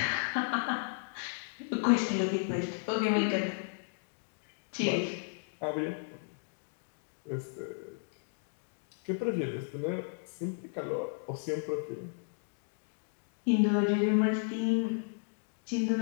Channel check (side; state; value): right; silent; digital silence